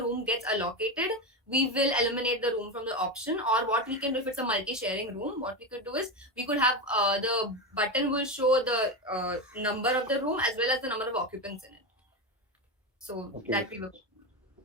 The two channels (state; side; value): normal; both; correlation 0.16